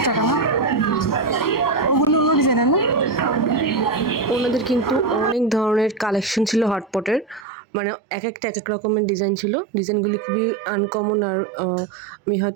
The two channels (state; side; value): drops out; left; at 7.5 s